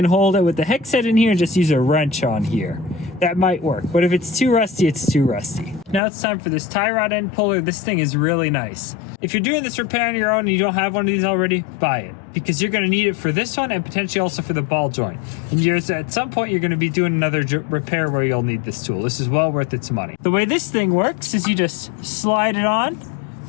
hold it with the hex head in here and just use a wrench on here. That might work, but if it's too rusty, it's too rusty. Now it's time for this tie rod end puller. This thing is really nice. If you're doing this repair on your own and you don't have one of these already, buy it. Because you're going to need it for this one and potentially also for the ball joint. And at some point you're going to be doing another repair where you'll need this tool. This is well worth its money. The way this thing works is you just slide it on,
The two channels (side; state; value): right; drops out; at 6.0 s